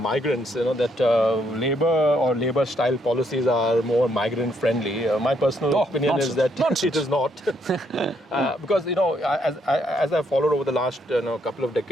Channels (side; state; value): both; normal; correlation 0.73